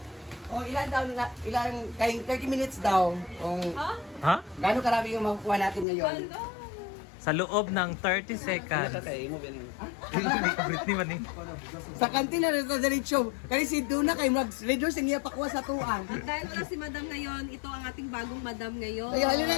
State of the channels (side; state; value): right; drops out; at 5.9 s